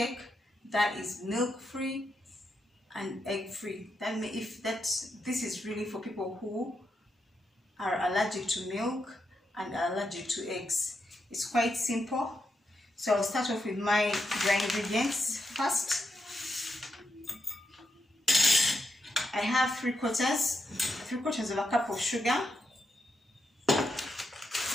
that is milk free and egg free. This is really for people who are allergic to milk and are allergic to eggs. It's quite simple. So I'll start off with my dry ingredients first. I have three quarters of a cup of sugar.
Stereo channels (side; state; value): both; normal; correlation 0.84